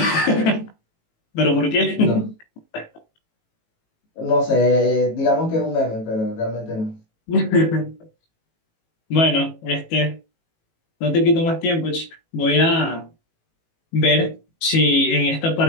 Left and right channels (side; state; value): right; late; 18 ms